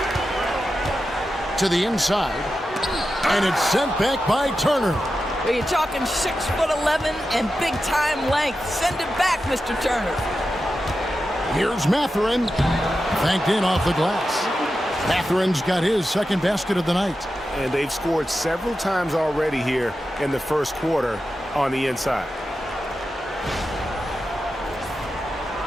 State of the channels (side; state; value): both; normal; correlation 0.91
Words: To the inside. And it's sent back by Turner. Well, you're talking 6'11" and big-time length. Send it back, Mr. Turner. Here's Mathurin. Banked in off the glass. Mathurin's got his second basket of the night. And they've scored several times already here in the first quarter on the inside.